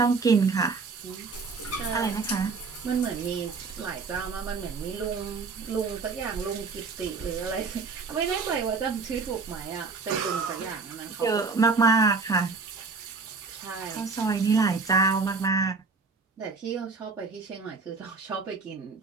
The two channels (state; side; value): quieter; left; 4.4 dB